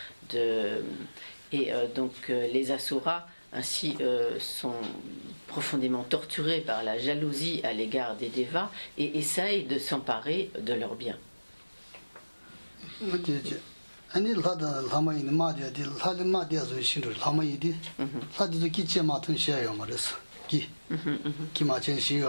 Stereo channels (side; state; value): both; inverted; correlation -1.00